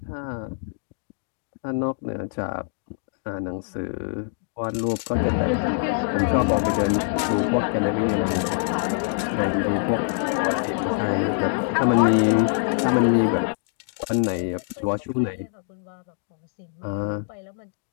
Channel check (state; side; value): silent; right; digital silence